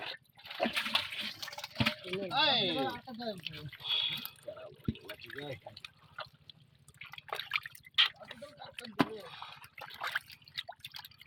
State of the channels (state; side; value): identical; both; correlation 1.00